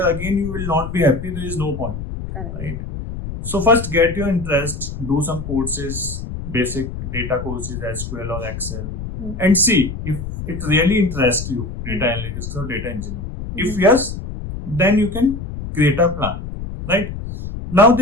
again you will not be happy, there is no point. Correct. Right? So first get your interest, do some courses, basic data courses, SQL or Excel, and see if it really interests you, data analytics or data engineering. If yes, then you can create a plan, right? Now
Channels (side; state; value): left; noise; rumble, 7 dB below the sound